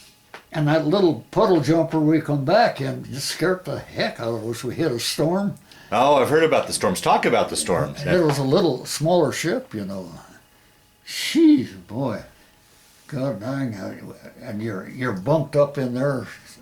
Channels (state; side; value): identical; both; correlation 1.00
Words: And that little puddle jumper we come back in just scared the heck out of us. We hit a storm. Oh, I've heard about the storms. Talk about the storms. And it was a little smaller ship, you know. Jeez, boy. God dang. And you're bunked up in there